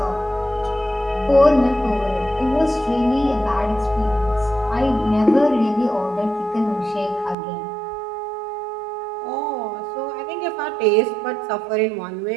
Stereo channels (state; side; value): drops out; left; at 7.4 s